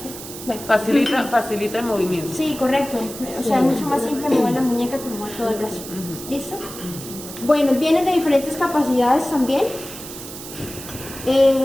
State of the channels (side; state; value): right; noise; hiss, 12 dB below the sound